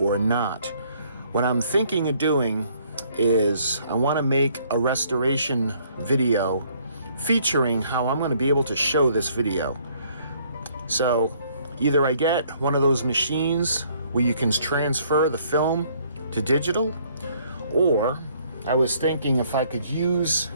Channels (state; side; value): inverted; both; correlation -0.63